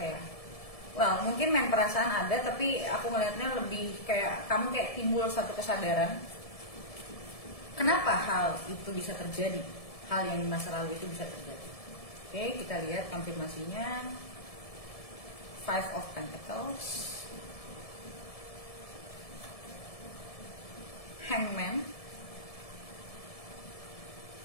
well, mungkin main perasaan ada, tapi aku ngeliatnya lebih kayak kamu kayak timbul satu kesadaran kenapa hal itu bisa terjadi, hal yang di masa lalu itu bisa terjadi. Oke, kita lihat konfirmasinya. Five of Pentacles, Hangman,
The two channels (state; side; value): late; right; 1.7 ms